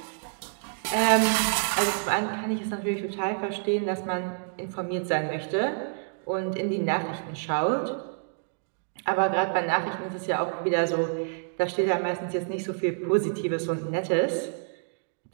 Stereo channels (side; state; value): left; silent; digital silence